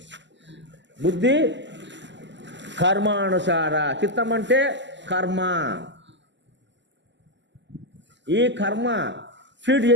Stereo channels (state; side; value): late; left; 0.53 ms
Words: బుద్ధి కర్మానుసార, చిత్తం అంటే కర్మ. ఈ కర్మ ఫీడ్